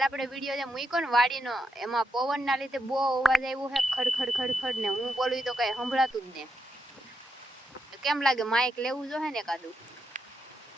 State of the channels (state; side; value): normal; both; correlation 0.83